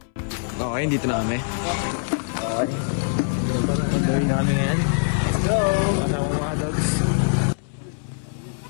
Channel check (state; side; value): silent; right; 63 dB below the other